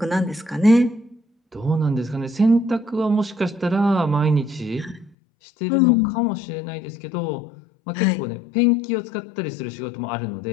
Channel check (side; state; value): right; drops out; at 5.2 s